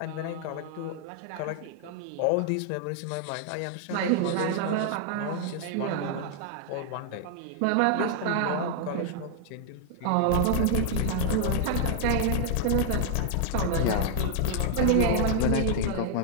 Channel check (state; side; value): different; both; correlation 0.00